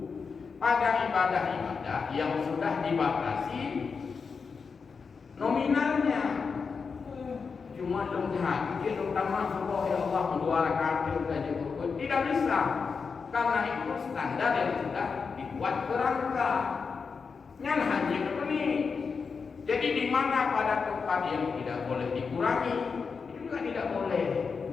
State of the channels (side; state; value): right; quieter; 5.3 dB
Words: pada ibadah-ibadah yang sudah dibatasi nominalnya. Cuma lihat, mungkin utama Allah ya Allah 2 rakaat saja, tidak bisa, karena itu standar yang sudah dibuat kerangka. Nyan haji ini. Jadi di mana pada tempat yang tidak boleh dikurangi, itu juga tidak boleh